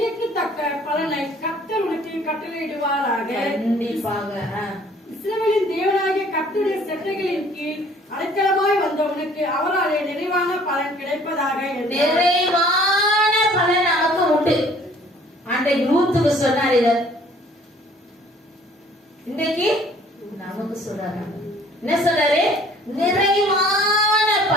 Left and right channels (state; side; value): normal; both; correlation 0.55